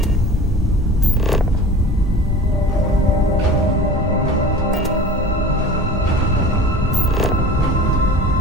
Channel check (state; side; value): normal; both; correlation 0.39